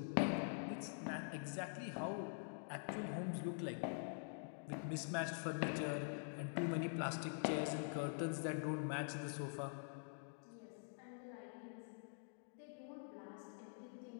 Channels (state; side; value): silent; right; digital silence